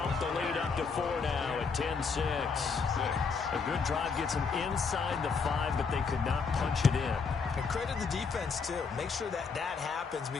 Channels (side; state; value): right; quieter; 5.2 dB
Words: the lead up to 4 now at 10-6. A good drive gets them inside the 5, but they could not punch it in. And credit the defense, too. Make sure that happens